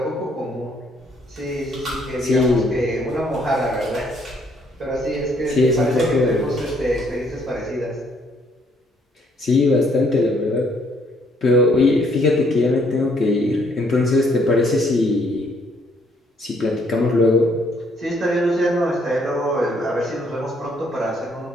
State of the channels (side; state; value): both; normal; correlation 0.67